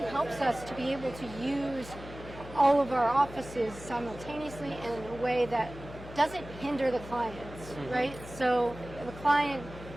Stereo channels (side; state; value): left; noise; hum, 14 dB below the sound